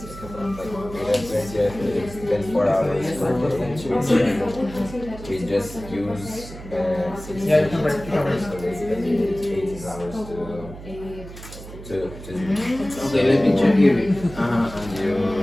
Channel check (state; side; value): noise; right; hum, 14 dB below the sound